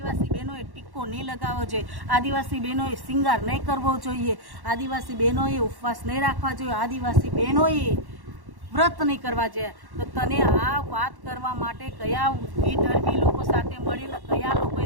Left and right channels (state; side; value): late; left; 1.1 ms